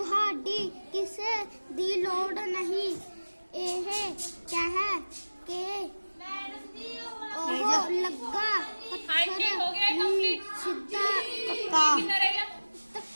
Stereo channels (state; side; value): inverted; both; correlation -1.00